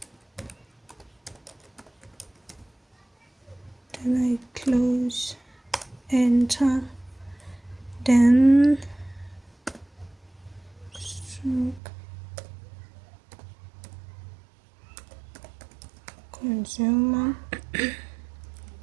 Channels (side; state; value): left; drops out; at 11.8 s